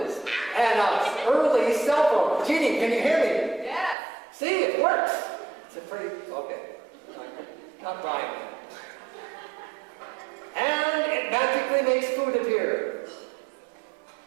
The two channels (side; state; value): left; drops out; at 4.0 s